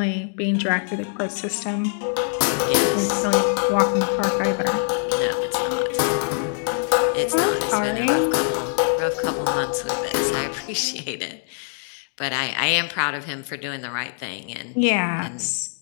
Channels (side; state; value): right; silent; 63 dB below the other